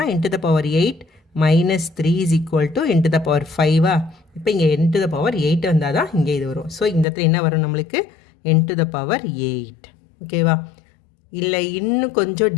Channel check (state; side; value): drops out; right; at 7.1 s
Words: n to the power 8 minus 3 is equal to n to the power 5 இப்போ இங்கே n to the power 8 வந்தால் தான் இங்கே இது வரும் ஸோ இந்த இடத்துல என்ன வரும் நம்மளுக்கு n to the power 8 ஓகேவா இல்லை இன்னும் கொஞ்சம்